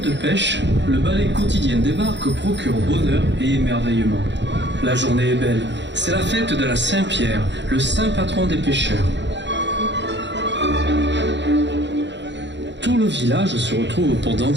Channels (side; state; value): left; late; 0.52 ms